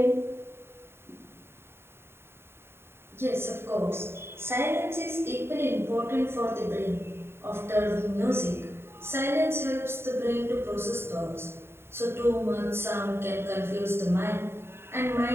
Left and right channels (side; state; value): left; late; 0.11 ms